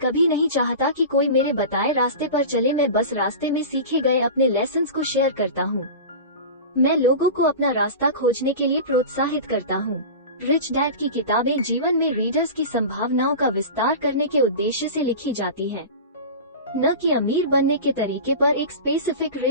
नहीं चाहता कि कोई मेरे बताए रास्ते पर चले, मैं बस रास्ते में सीखे गए अपने लेसन्स को शेयर करता हूँ। मैं लोगों को अपना रास्ता खोजने के लिए प्रोत्साहित करता हूँ। रिच डैड की किताबें जीवन में रीडर्स की संभावनाओं का विस्तार करने के उद्देश्य से लिखी जाती हैं, न कि अमीर बनने के तरीके पर एक स्पेसिफिक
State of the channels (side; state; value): both; inverted; correlation -0.31